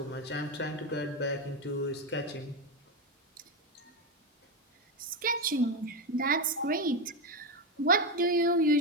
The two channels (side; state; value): both; normal; correlation 0.11